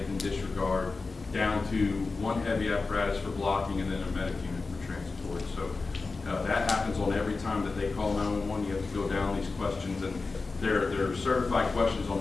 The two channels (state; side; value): quieter; right; 4.0 dB